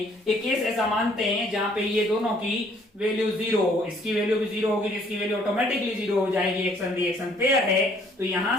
एक केस ऐसा मानते हैं जहां पे ये दोनों की वैल्यू जीरो हो, इसकी वैल्यू भी जीरो होगी, जिसकी वैल्यू ऑटोमेटिकली जीरो हो जाएगी, एक्शन रिएक्शन पेयर है, तो यहां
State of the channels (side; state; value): both; normal; correlation 0.62